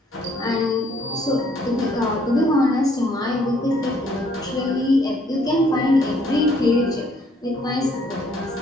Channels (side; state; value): both; normal; correlation 0.65